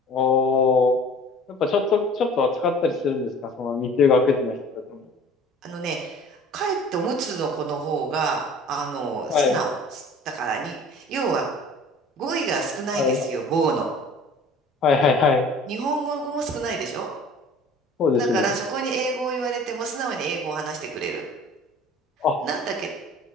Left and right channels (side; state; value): both; normal; correlation 0.46